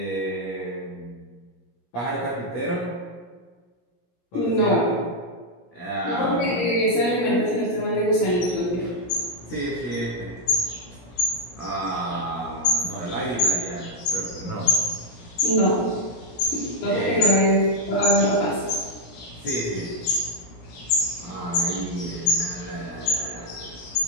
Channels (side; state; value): right; late; 17 ms